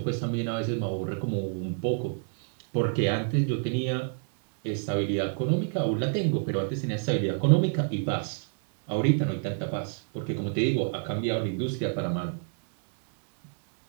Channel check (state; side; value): silent; left; 58 dB below the other